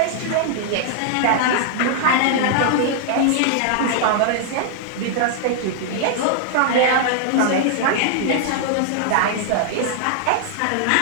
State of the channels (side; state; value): both; different; correlation -0.01